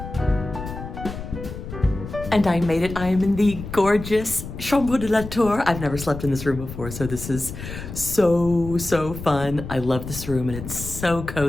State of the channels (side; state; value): left; noise; rumble, 10 dB below the sound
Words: And I made it. I am in the gorgeous Chateau de Lalande. I've never slept in this room before, so this is so fun. I love this room, and it's so